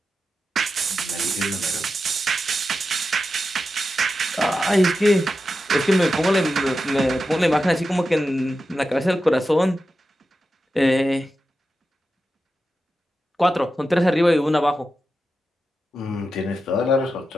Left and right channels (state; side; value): normal; both; correlation 0.90